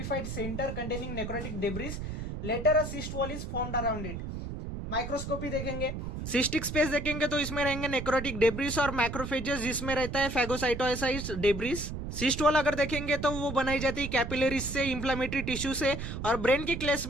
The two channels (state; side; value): noise; right; rumble, 6 dB below the sound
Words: centre containing necrotic debris. Later a cyst wall is formed around it. Microscopy देखेंगे, सिस्टिक स्पेस देखेंगे तो इसमें रहेंगे नेक्रोटिक डेब्रिस और मैक्रोफेजेस जिसमें रहता है फैगोसाइटोसाइट्स डेब्रिस. सिस्ट वॉल अगर देखेंगे तो वो बनाई जाती है कैपिलरीज से, इंफ्लेमेटरी टिश्यू से और ब्रेन के केस